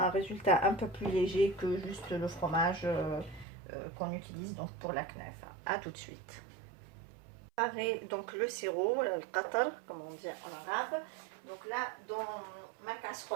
résultat un peu plus léger que juste le fromage qu'on utilise donc pour la knafa. À tout de suite. Préparer donc le sirop, le qatar comme on dit en arabe. Donc là dans ma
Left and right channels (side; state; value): left; drops out; at 3.5 s